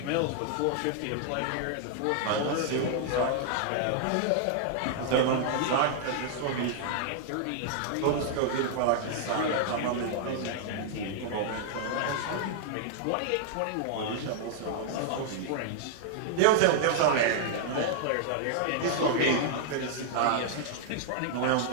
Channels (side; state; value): both; different; correlation -0.01